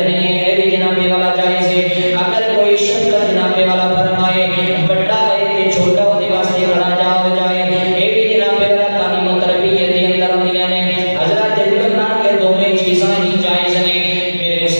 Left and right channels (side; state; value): both; inverted; correlation -1.00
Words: ہے، بھی جناب والا جائز ہے۔ اگر کوئی شفقت جناب والا فرمائے بڑا ہے کہ چھوٹا اس کے واسطے کھڑا ہو جائے، یہ بھی جناب والا تعلیم و تربیت کے اندر ہوندیاں نے۔ حضرت اللہ کے دونوں چیزاں ہی جائز ہیں، میرے